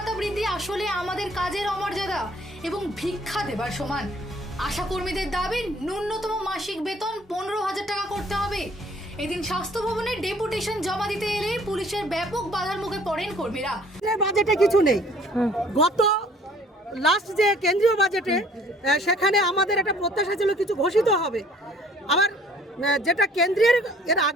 বৃদ্ধি আসলে আমাদের কাজের অমর্যাদা এবং ভিক্ষা দেবার সমান। আশাকর্মীদের দাবি ন্যূনতম মাসিক বেতন 15,000 টাকা করতে হবে। এদিন স্বাস্থ্য ভবনের ডেপুটেশন জমা দিতে এলে পুলিশের ব্যাপক বাধার মুখে পড়েন কর্মীরা। বাজেটে কিছু নেই। গত লাস্ট যে কেন্দ্রীয় বাজেটে সেখানে আমাদের একটা প্রত্যাশা ছিল কিছু ঘোষিত হবে। আবার যেটা কেন্দ্রের এর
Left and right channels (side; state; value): both; normal; correlation 0.56